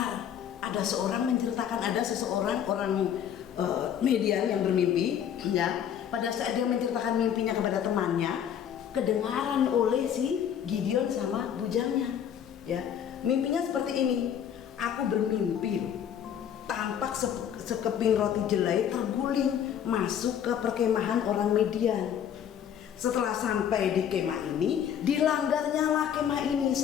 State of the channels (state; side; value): quieter; right; 9.2 dB